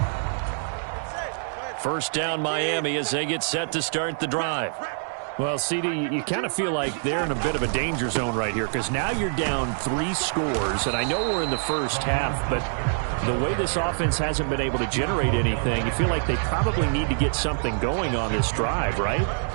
First down Miami as they get set to start the drive. Well, CD, you kind of feel like they're in a bit of a danger zone right here because now you're down 3 scores, and I know we're in the first half, but the way this offense hasn't been able to generate anything, you feel like they probably need to get something going on this drive, right?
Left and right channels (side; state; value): left; silent; digital silence